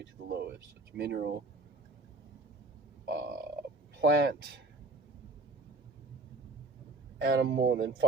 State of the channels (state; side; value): quieter; left; 3.1 dB